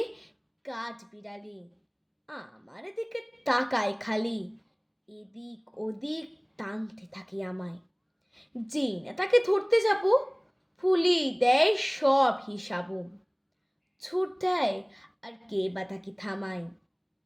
কাঠ বিড়ালি, আমার দিকে তাকায় খালি, এদিক ওদিক টানতে থাকে আমায়। যে না তাকে ধরতে যাব, ভুলিয়ে দেয় সব হিসাবও। ছুট দেয় আর কে বা তাকে থামায়,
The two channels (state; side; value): identical; both; correlation 1.00